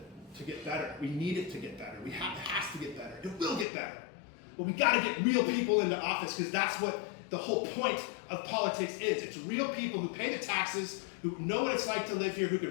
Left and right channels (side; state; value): right; drops out; at 3.7 s